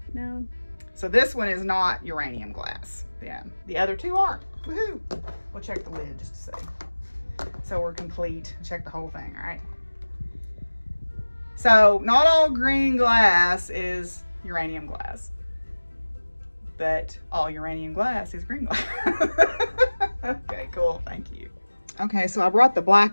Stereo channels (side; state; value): both; inverted; correlation -1.00